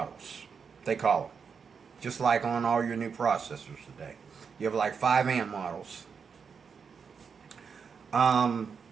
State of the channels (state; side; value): quieter; left; 6.1 dB